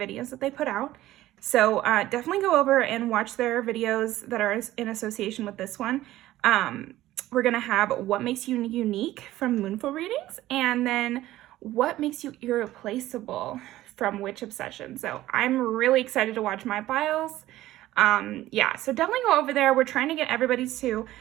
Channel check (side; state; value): left; quieter; 15.2 dB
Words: that they put out. So definitely go over and watch their videos that are in association with this one. We're going to have what makes you unique from Moonful Readings, and then what makes you irreplaceable from Witch Obsession. So I'm really excited to watch my files. Yeah, so definitely go over there. We're trying to get everybody to